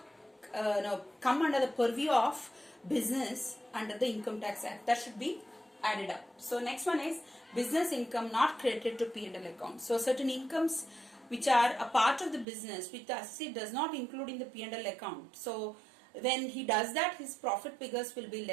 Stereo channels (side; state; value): left; drops out; at 12.5 s